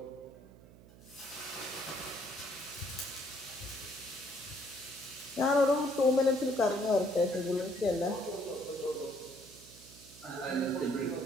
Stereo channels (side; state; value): right; noise; hum, 21 dB below the sound